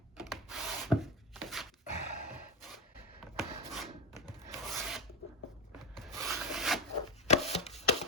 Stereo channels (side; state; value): both; normal; correlation 0.14